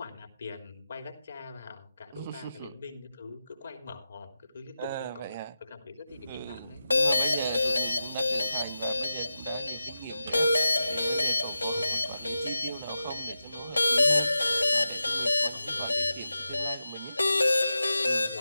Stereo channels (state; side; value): inverted; both; correlation -0.91